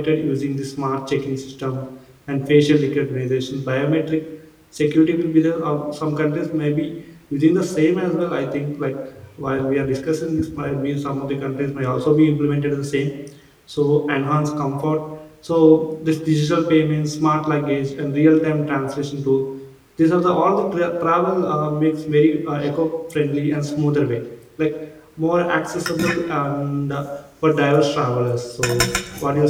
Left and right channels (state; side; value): identical; both; correlation 1.00